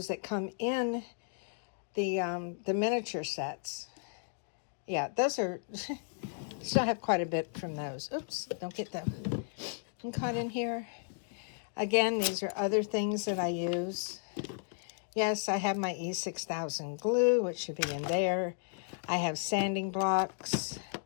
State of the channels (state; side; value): silent; right; digital silence